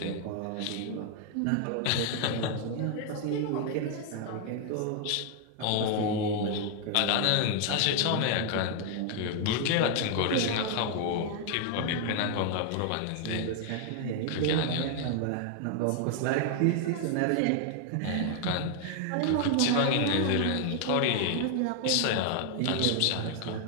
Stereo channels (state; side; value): different; both; correlation 0.00